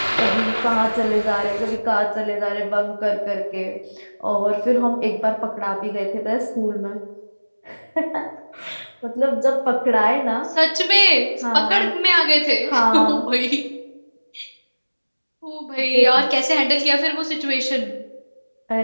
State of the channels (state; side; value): inverted; both; correlation -1.00